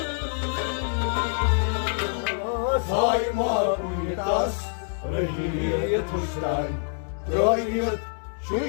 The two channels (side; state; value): right; silent; 57 dB below the other